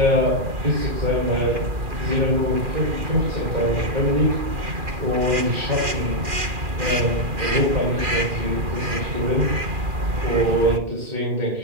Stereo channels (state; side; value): late; left; 2.4 ms